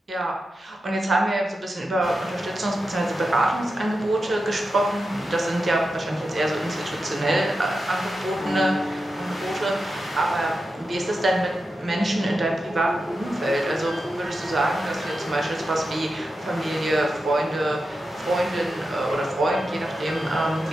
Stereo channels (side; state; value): both; normal; correlation 0.90